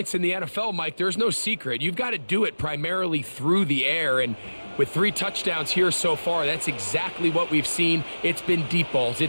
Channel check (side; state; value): both; inverted; correlation -1.00